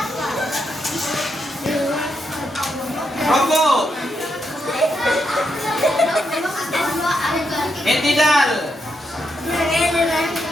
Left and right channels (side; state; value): both; normal; correlation 0.81